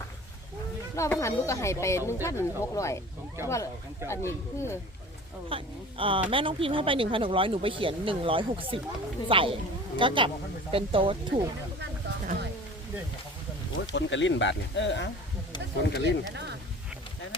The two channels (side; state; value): both; normal; correlation 0.42